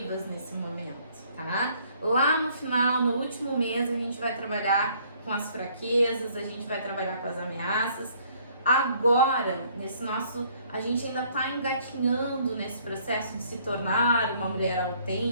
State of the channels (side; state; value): both; inverted; correlation -0.62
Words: nesse momento, tá? Lá no final, no último mês, a gente vai trabalhar com as fraquezas, a gente vai trabalhar com as ameaças. Agora, a gente ainda está engatinhando nesse processo de se tornar uma mulher